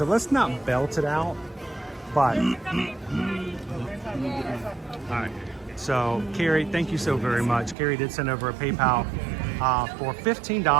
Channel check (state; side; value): drops out; left; at 7.8 s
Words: let's not belt it out, but... All right. So, Carrie, thank you so very much. Carrie did send over a PayPal for